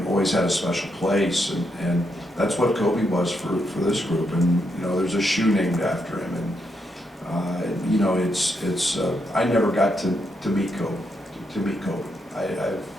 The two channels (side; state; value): both; normal; correlation 0.80